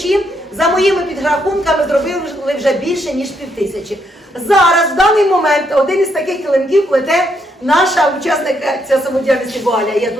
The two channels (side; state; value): both; normal; correlation 0.76